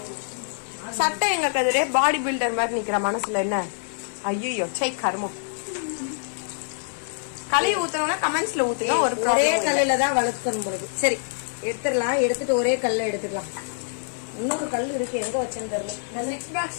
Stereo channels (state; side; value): silent; right; digital silence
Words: சட்டை எங்க கதிரே பாடி பில்டர் மாதிரி நிக்கிற மனசுல என்ன. ஐயோ சை கர்மம். கலையை ஊத்தணும்னா கமெண்ட்ஸ்ல ஊத்துங்க. ஒரே கல்லுல தான் வளர்க்கணும் பொழுது. சரி எடுத்துடலாம். எடுத்துட்டு ஒரே கல்ல எடுத்துக்கலாம். இன்னொரு கல் இருக்கு, எங்க வச்சேன்னு தெரியல. இந்த 6